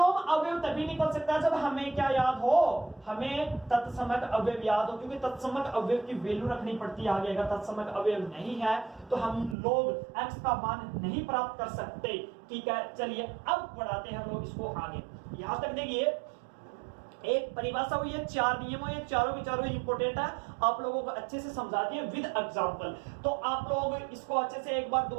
अवयव तभी निकल सकता है जब हमें क्या याद हो, हमें तत्समक अवयव याद हो, क्योंकि तत्समक अवयव की वैल्यू रखनी पड़ती है आगे। अगर तत्समक अवयव नहीं है तो हम लोग x का मान नहीं प्राप्त कर सकते। ठीक है, चलिए अब बढ़ाते हैं हम लोग इसको आगे। यहां तक देखिए एक परिभाषा हुई है, 4 नियमों, ये चारों के चारों इंपॉर्टेंट है, आप लोगों को अच्छे से समझा दिए विद एग्जांपल। तो आप लोग इसको अच्छे से एक बार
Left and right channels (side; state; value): left; drops out; at 9.6 s